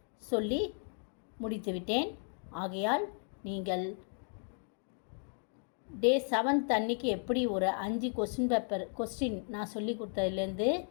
சொல்லி முடித்துவிட்டேன். ஆகையால் நீங்கள் டே 7th அன்றைக்கி எப்படி ஒரு 5 கொஸ்டின் நான் சொல்லி கொடுத்ததுலேருந்து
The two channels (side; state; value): right; silent; 55 dB below the other